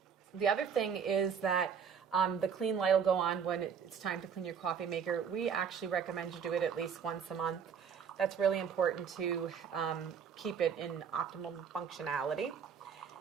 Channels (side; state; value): left; quieter; 7.0 dB